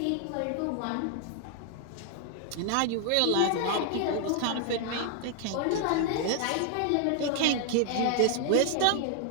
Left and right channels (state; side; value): different; both; correlation 0.00